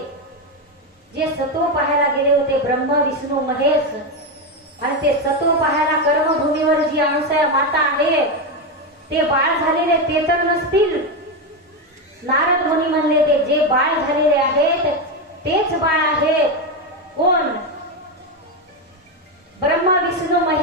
जे सत्व पाहायला गेले होते ब्रह्म विष्णू महेश आणि ते सत्व पाहायला कर्मभूमीवर जी अनुसया माता आहे ते बाळ झालेले ते तर नसतील. नारद मुनी म्हणले, ते जे बाळ झालेले आहेत तेच बाळ आहेत. कोण? ब्रह्म विष्णू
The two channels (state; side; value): normal; both; correlation 0.10